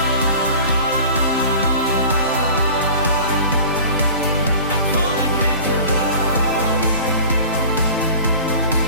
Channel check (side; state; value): both; inverted; correlation -0.42